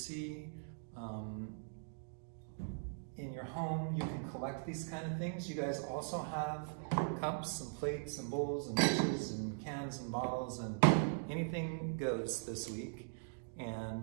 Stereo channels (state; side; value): silent; left; digital silence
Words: in your home. You can collect these kind of things. You guys also have cups and plates and bowls and dishes and cans and bottles, and anything goes this week.